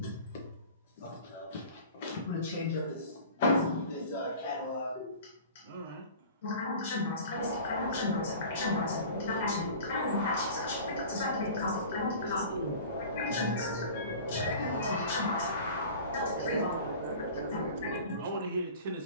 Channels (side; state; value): both; inverted; correlation -0.40